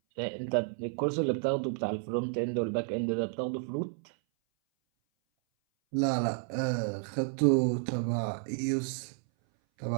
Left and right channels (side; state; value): left; silent; 57 dB below the other